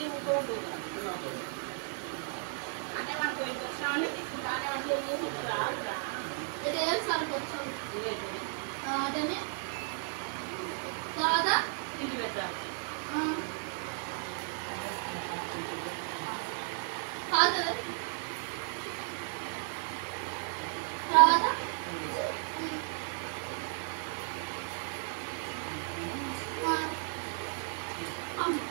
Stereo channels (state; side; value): silent; left; 55 dB below the other